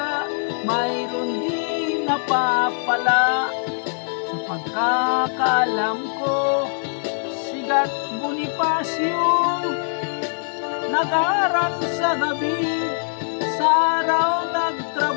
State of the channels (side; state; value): right; silent; 64 dB below the other